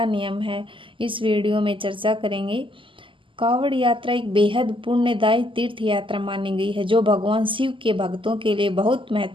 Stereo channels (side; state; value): left; late; 0.25 ms